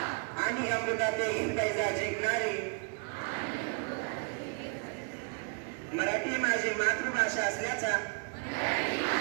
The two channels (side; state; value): left; quieter; 38.7 dB